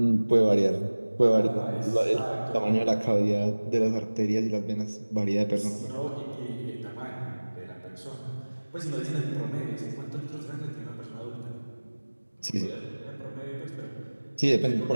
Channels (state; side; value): inverted; both; correlation -1.00